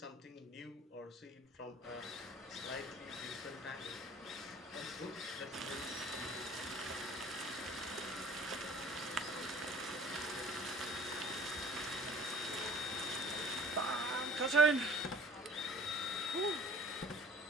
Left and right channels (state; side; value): normal; both; correlation 0.50